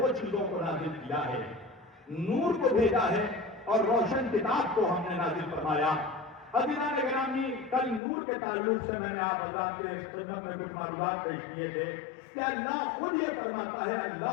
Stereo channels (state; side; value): drops out; right; at 8.0 s